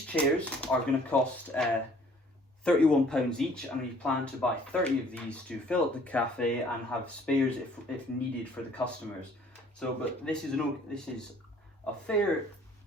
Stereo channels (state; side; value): normal; both; correlation 0.56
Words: chairs are going to cost £31 each, and we plan to buy 30 of these to fill up the cafe and have spares if needed for the customers. So, but this is a fair